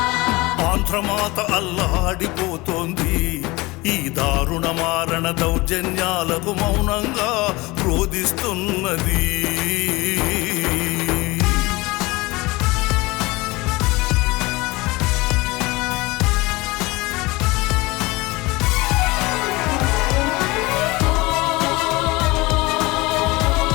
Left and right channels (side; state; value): right; quieter; 22.5 dB